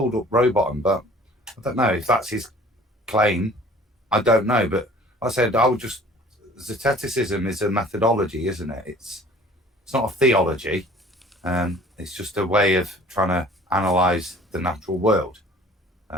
up Rowbotham, but I don't know if that's his claim. I don't know, but I said I would just zeteticism is a methodology, isn't it? It's not a theology. It's just a way of trying to analyze the natural world,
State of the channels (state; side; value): normal; both; correlation 0.50